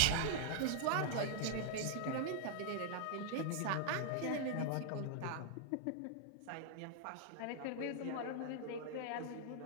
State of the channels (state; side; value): different; both; correlation -0.01